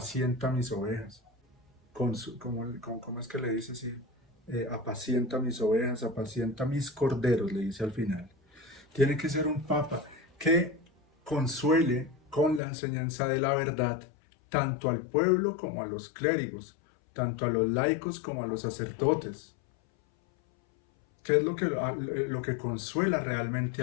mis ovejas, ¿cómo es que le dice así? Apacienta mis ovejas, apacienta mis corderos, le dice al final. Tiene que ser un papa que consuele con la enseñanza de la verdad tanto al pueblo como a los clérigos, tanto a los laicos como a los sacerdotes. ¿Qué es lo que consuela realmente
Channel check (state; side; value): drops out; right; at 12.6 s